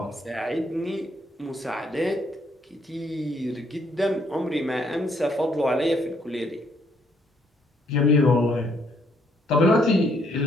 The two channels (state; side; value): normal; both; correlation 0.70